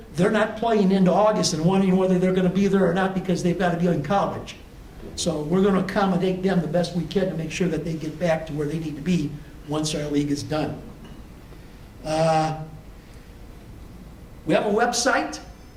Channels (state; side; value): identical; both; correlation 1.00